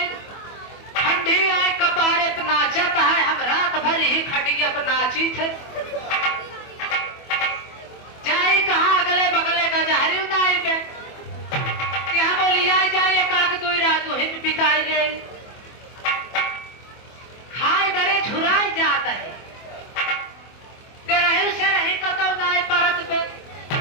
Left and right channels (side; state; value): right; late; 24 ms